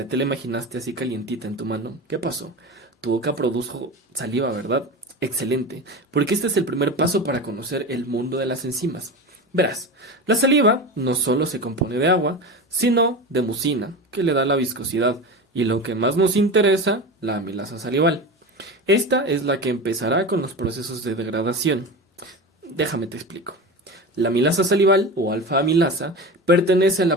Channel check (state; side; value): normal; both; correlation 0.26